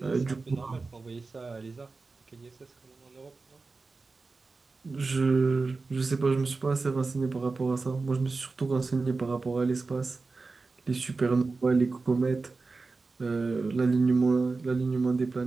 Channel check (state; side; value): quieter; left; 3.9 dB